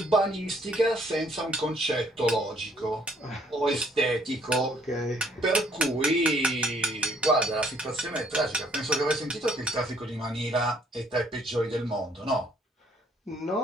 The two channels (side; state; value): both; normal; correlation 0.64